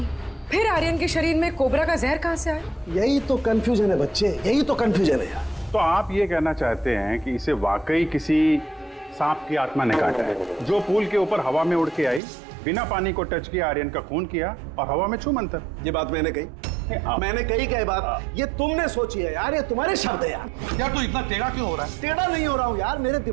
फिर आर्यन के शरीर में कोबरा का जहर कहाँ से आया? यही तो कंफ्यूजन है बच्चे, यही तो कंफ्यूजन है यार। तो आप ये कहना चाहते हैं कि इसे वाकई किसी सांप की आत्मा ने काटा है, जो पूल के ऊपर हवा में उड़ के आई, बिना पानी को टच किया, आर्यन का खून किया और हवा में छू मंतर। ये बात मैंने कही? मैंने कही क्या बात? ये तुमने सोची है यार, ये तुम्हारे शब्द है यार। यार तू इतना टेढ़ा क्यों हो रहा है? टेढ़ा नहीं हो रहा हूँ यार, मेरे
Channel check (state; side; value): drops out; left; at 12.2 s